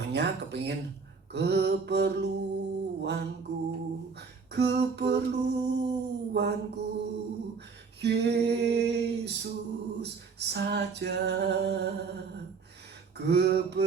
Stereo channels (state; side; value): quieter; left; 5.2 dB